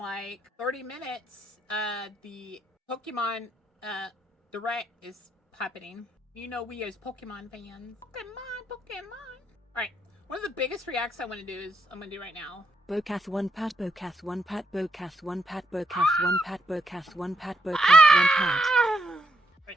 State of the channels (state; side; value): normal; both; correlation 0.79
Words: 30 minutes, the Pokemon Direct is happening. You know we as Pokemon fans. Pokemon. Alright, one of the biggest reacts I want to do is, I'm going to do right now. Bokath 1 pat, Bokath 1 pat, Bokath 1 pat, Bokath 1 pat, Bokath 1 pat, Bokath 1 pat.